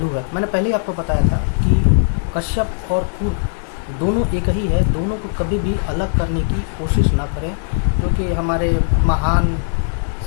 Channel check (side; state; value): right; silent; digital silence